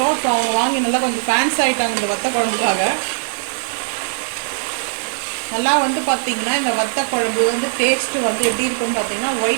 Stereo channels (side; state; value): left; silent; digital silence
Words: ஸோ அவங்க வாங்கி நல்லா கொஞ்சம் ஃபேன்ஸ் ஆகிட்டாங்க இந்த வத்த குழம்புக்காக. நல்லா வந்து பார்த்திங்கன்னா இந்த வத்த குழம்பு வந்து டேஸ்ட்டு வந்து எப்படி இருக்குன்னு பார்த்திங்கன்னா